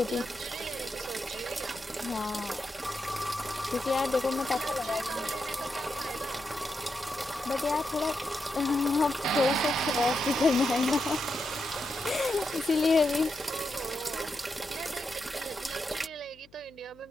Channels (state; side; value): noise; left; hum, 28 dB below the sound